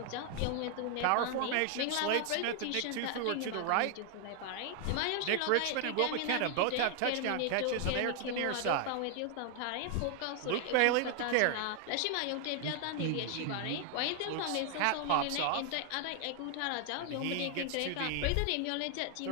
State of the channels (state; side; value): different; both; correlation 0.00